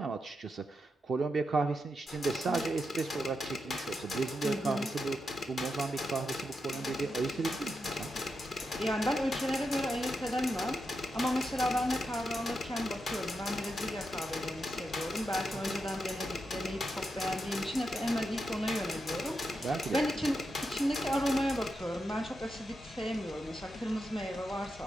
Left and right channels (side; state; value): both; normal; correlation 0.86